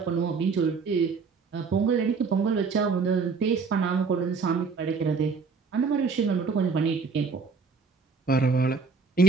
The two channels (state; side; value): quieter; left; 5.0 dB